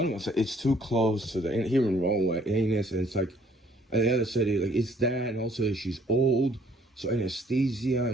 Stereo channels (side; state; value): both; normal; correlation 0.61